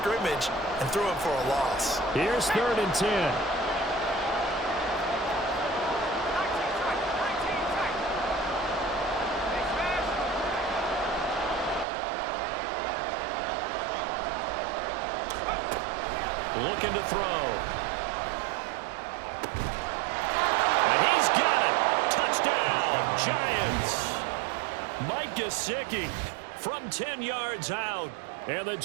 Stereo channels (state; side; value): drops out; left; at 11.9 s